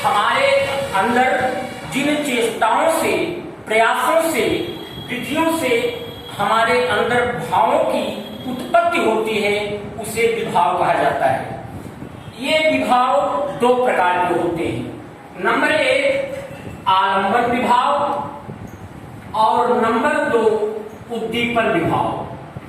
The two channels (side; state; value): both; identical; correlation 1.00